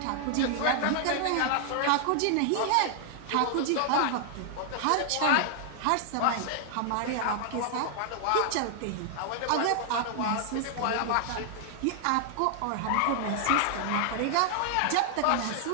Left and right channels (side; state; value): both; different; correlation 0.00